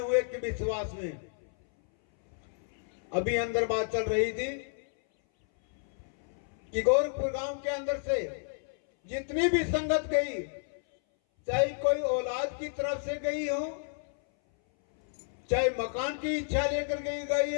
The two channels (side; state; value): right; silent; 57 dB below the other